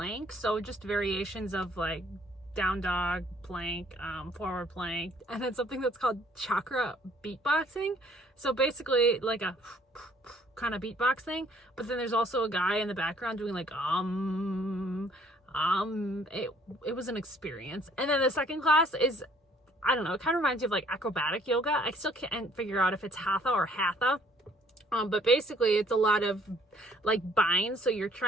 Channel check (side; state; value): both; normal; correlation 0.61